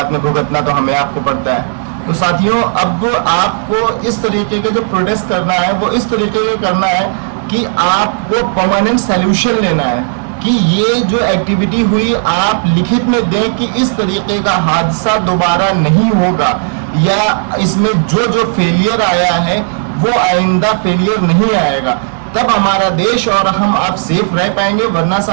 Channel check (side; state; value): left; silent; digital silence